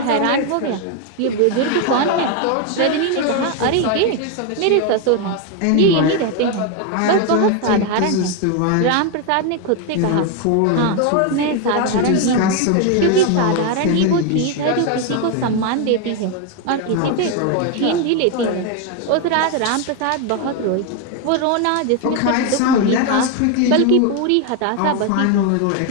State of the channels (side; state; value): both; different; correlation 0.01